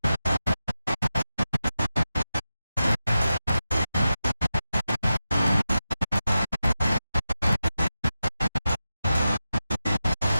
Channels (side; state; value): both; inverted; correlation -0.92